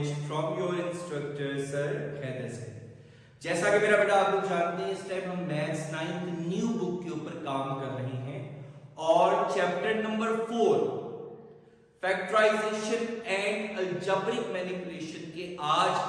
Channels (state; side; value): identical; both; correlation 1.00